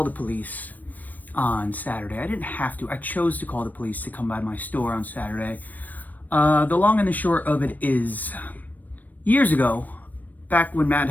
the police on Saturday. I didn't have to. I chose to call the police to come by my store on Saturday. The long and the short of it is, years ago, back when Matt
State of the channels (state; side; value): late; right; 0.083 ms